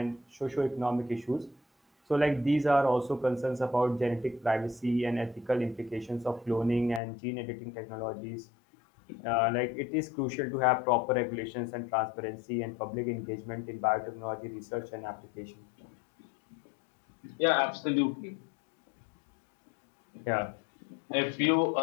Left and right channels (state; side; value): drops out; right; at 7.0 s